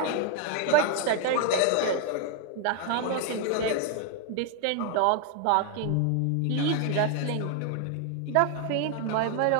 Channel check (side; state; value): both; different; correlation 0.00